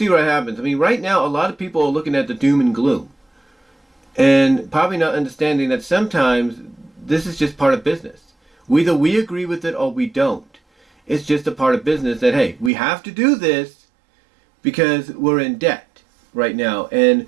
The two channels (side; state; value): left; drops out; at 12.7 s